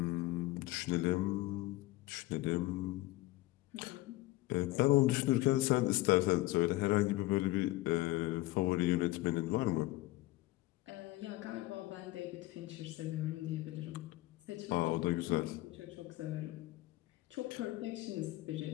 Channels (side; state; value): right; quieter; 18.1 dB